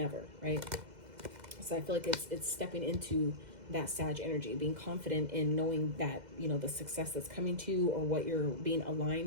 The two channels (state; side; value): late; left; 2.0 ms